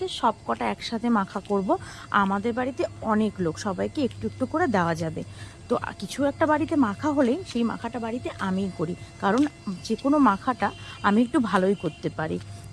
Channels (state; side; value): identical; both; correlation 1.00